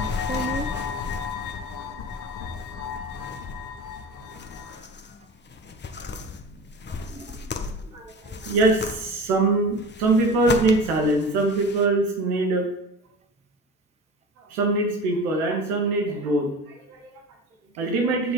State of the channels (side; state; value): both; normal; correlation 0.34